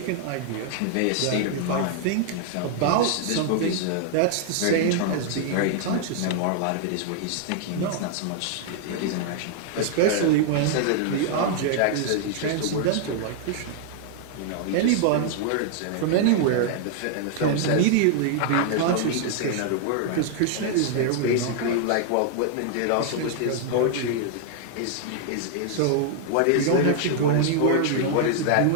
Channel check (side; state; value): both; different; correlation -0.01